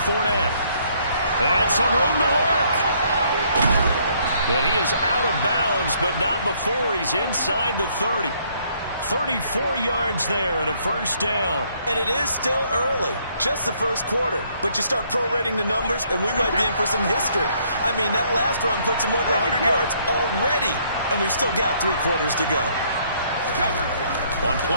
And some room to work. And he is out of bounds, but not before he's inside the 30. 34 yards there and a first down. And it is still early, just the first quarter. But you start prorating the numbers, and we might be in for some history. I mean, that last run puts him over 100 yards already, and we've still got 3 quarters to go. On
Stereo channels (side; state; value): both; inverted; correlation -0.67